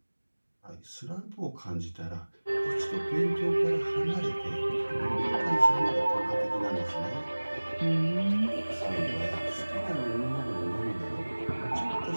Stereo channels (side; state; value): both; inverted; correlation -1.00